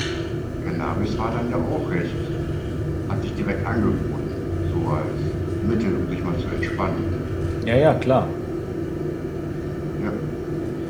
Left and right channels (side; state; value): both; identical; correlation 1.00